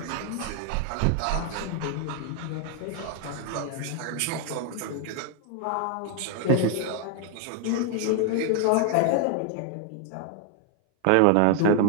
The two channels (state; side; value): different; both; correlation 0.00